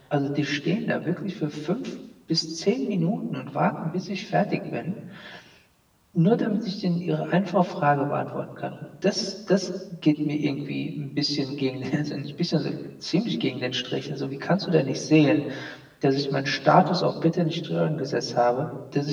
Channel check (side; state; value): both; identical; correlation 1.00